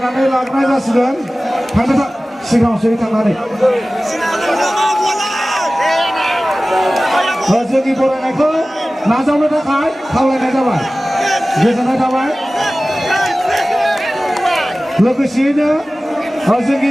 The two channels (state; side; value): normal; both; correlation 0.97